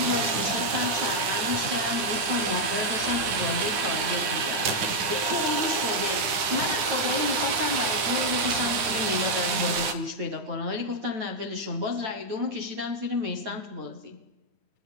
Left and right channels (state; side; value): late; left; 9.7 ms